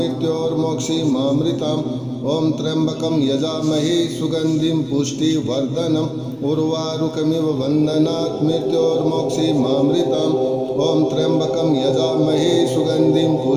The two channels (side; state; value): both; identical; correlation 1.00